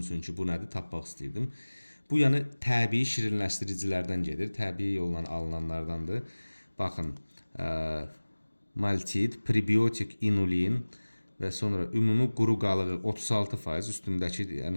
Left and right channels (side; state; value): both; inverted; correlation -1.00